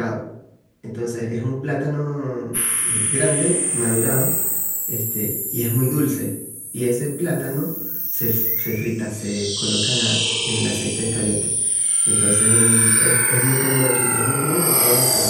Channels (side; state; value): both; identical; correlation 1.00